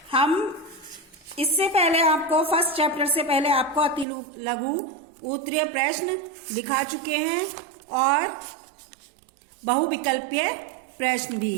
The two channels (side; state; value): left; drops out; at 4.0 s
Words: हम इससे पहले आपको फर्स्ट चैप्टर से पहले आपको अति लघु उत्तरीय प्रश्न दिखा चुके हैं और बहुविकल्पीय प्रश्न भी